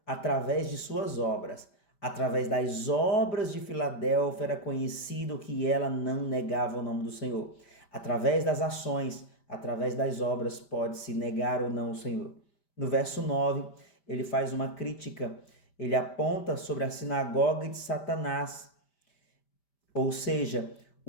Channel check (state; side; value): late; right; 5.0 ms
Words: através de suas obras. Através das obras de Filadélfia era conhecido que ela não negava o nome do Senhor. Através das ações, através das obras, pode-se negar ou não o Senhor. No verso 9, ele faz uma crítica. Ele aponta sobre a sinagoga de Satanás, ou seja,